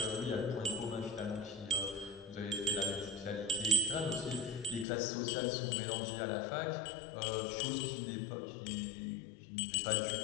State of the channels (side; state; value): right; drops out; at 4.9 s